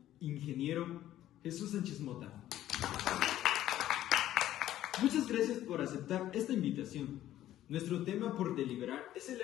ingeniero Jesús Sánchez Mota. Muchas gracias por aceptar esta invitación. Nuestro tema por deliberar es el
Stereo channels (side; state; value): right; quieter; 13.1 dB